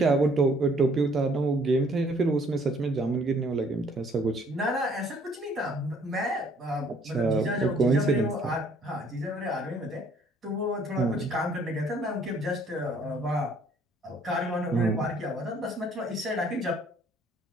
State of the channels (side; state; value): both; normal; correlation 0.61